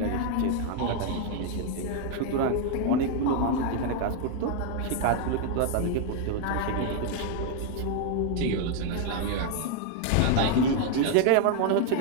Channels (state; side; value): different; both; correlation 0.00